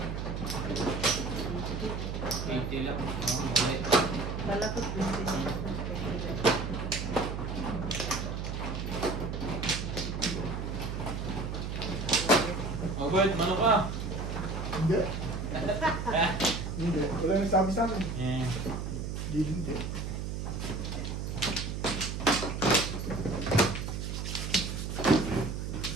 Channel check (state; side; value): noise; right; hum, 4 dB below the sound